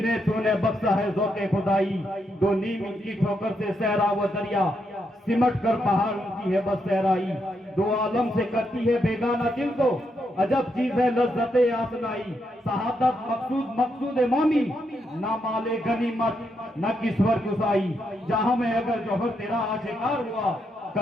तूने बख्शा है ज़ौक़े खुदाई, दो नीम की ठोकर से सहरा व दरिया, सिमट कर पहाड़ उनकी है बस सहराई। दो आलम से करती है बेगाना दिल को, अजब चीज है लज्जते आसनाई। शहादत मकसूद मकसूद मौमी, ना माले गनीमत न किस्वर गुसाई। जहां में अगर जौहर तेरा आशिकार हुआ,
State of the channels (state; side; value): normal; both; correlation 0.80